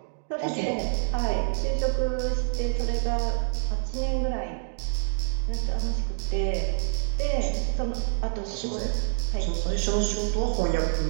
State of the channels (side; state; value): left; silent; digital silence